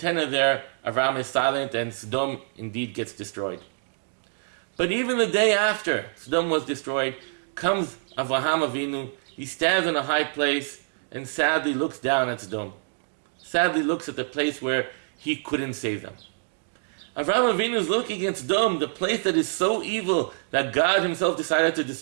are there, Avraham is silent and Sodom indeed gets destroyed. But even the day after Sodom was destroyed, comes Avraham Avinu. He stands in a high place and sadly looks down at Sodom. Sadly looks at the place where he couldn't save them. Avraham Avinu is looking at Sodom, the place that is so evil that God himself decided to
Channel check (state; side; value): silent; left; digital silence